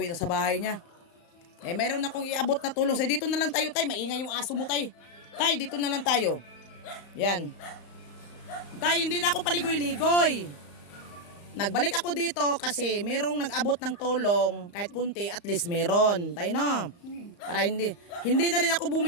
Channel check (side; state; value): right; late; 35 ms